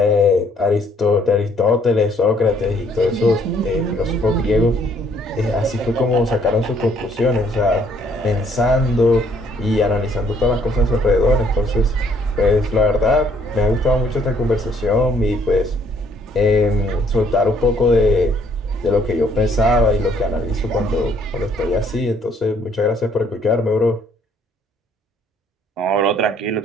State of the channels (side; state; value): both; normal; correlation 0.65